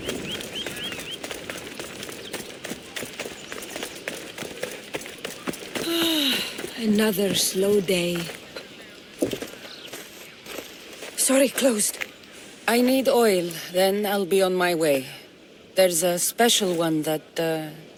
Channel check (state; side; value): identical; both; correlation 1.00